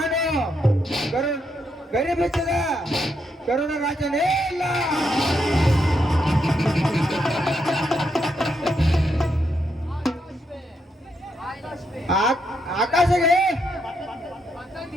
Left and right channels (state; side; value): normal; both; correlation 0.79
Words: ಗರಿಬಿಚ್ಚದ ಕರುಣ ರಾಜನೇ ಇಲ್ಲ. ಆಕಾಶಗೆ